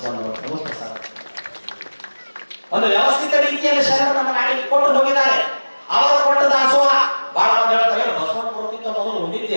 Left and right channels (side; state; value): both; inverted; correlation -1.00